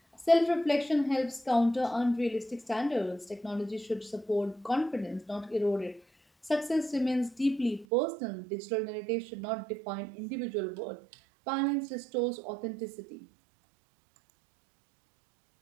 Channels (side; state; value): left; drops out; at 7.9 s